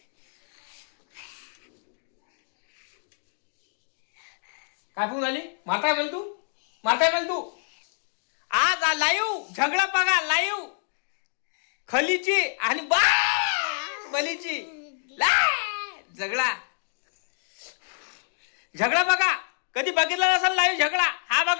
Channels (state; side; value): silent; right; 60 dB below the other